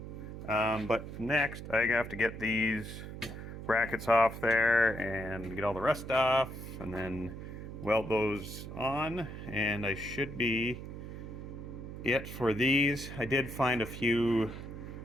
But next, I have to get these brackets off there and get all the rust off, and then weld those on, and I should be it for these. I did find a few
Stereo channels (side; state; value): right; noise; hum, 10 dB below the sound